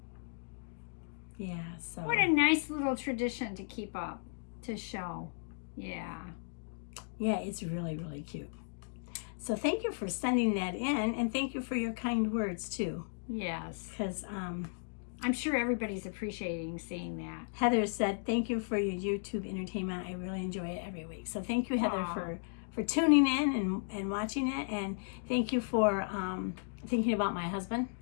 Yeah, so. What a nice little tradition to keep up, to show. Yeah. Yeah, it's really, really cute. So thank you for sending that in, and thank you for your kind words, too. Yes. Because I'm sure everybody's appreciating seeing that. Heather said, thank you for your YouTube entertainment. I really enjoy it every week. So thank you, Heather, for tuning in and watching it. And thank you for thinking about my husband.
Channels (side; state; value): right; silent; digital silence